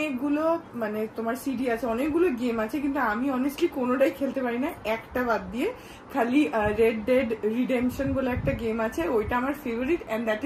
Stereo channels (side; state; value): both; identical; correlation 1.00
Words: মানে তোমার সিডি আছে, অনেকগুলো গেম আছে, কিন্তু আমি অনেস্টলি কোনোটাই খেলতে পারি না, একটা বাদ দিয়ে। খালি রেড ডেড রিডেম্পশন বলে একটা গেম আছে, ওইটা আমার favourite, and that